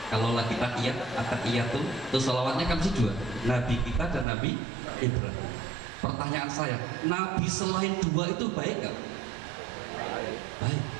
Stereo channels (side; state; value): left; drops out; at 4.2 s